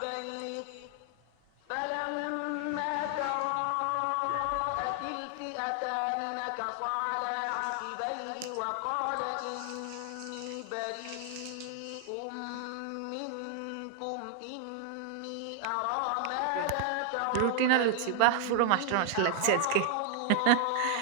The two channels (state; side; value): different; both; correlation 0.00